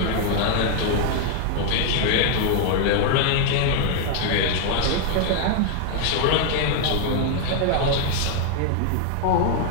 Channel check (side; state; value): both; different; correlation 0.00